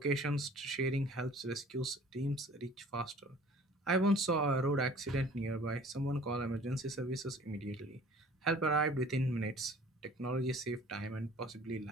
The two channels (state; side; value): normal; both; correlation 0.49